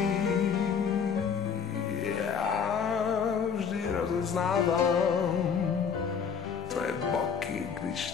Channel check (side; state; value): right; quieter; 6.6 dB